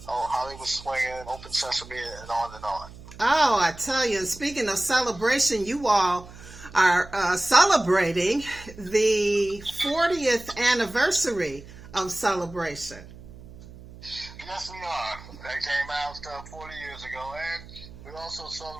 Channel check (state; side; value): noise; right; hum, 17 dB below the sound